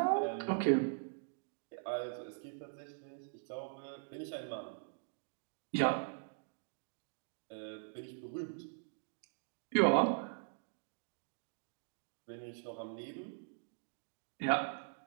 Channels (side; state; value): left; silent; digital silence